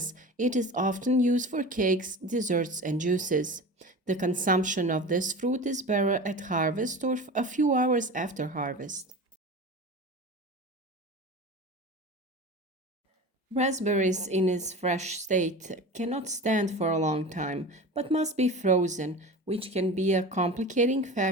it is often used for cakes, desserts, and juices. The consumption of this fruit is better at harvest or a few hours after harvest. Raspberries in its fresh state cannot stand for a long time, but must be frozen, which can be a complicating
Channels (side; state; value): both; normal; correlation 0.33